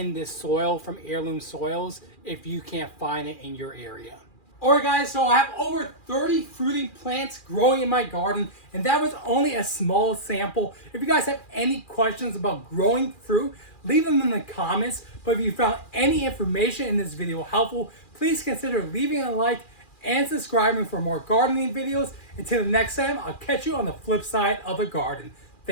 this soil from Heirloom Soils if you can't find it in your area. Alright guys, so I have over 30 fruiting plants growing in my garden, and that was only a small sample. If you guys have any questions about growing fruit, leave them in the comments. But if you found any information in this video helpful, please consider leaving a like and subscribing for more gardening videos. Until the next time, I'll catch you on the flip side of the garden.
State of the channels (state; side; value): late; right; 2.4 ms